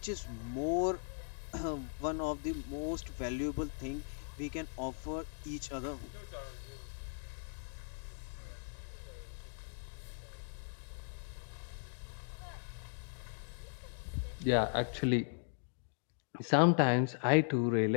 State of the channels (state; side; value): silent; right; digital silence